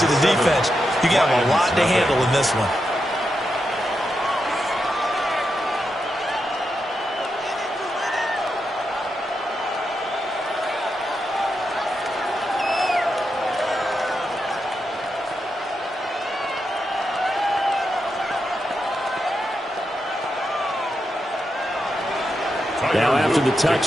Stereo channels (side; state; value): both; normal; correlation 0.86